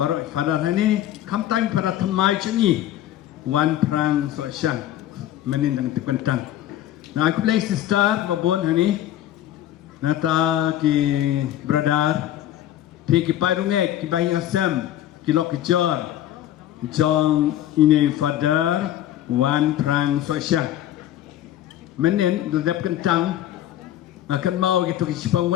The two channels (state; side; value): quieter; right; 12.4 dB